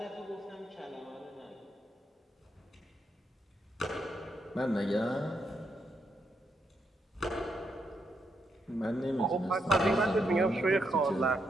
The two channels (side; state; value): both; normal; correlation 0.80